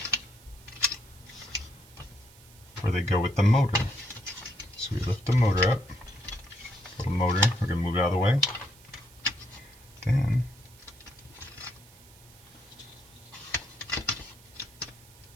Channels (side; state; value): right; noise; hiss, 24 dB below the sound